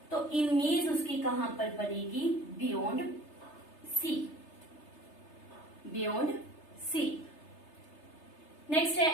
तो इमेज उसकी कहां पर बनेगी? Beyond C. Beyond C. Next है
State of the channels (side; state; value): right; late; 3.3 ms